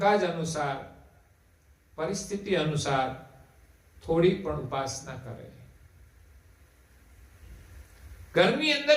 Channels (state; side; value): identical; both; correlation 1.00